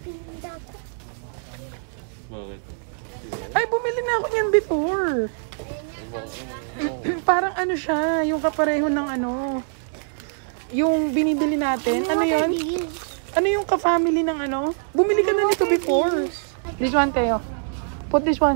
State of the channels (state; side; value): silent; left; digital silence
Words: Bakit? Ay, bumili na ako niyan before. Parang ano siya, yung kapareho ng ano, yung binibili natin. Ano yun? Ano yung ka-family ng ano? Bumili ka na nito before. This one, Teo. Put this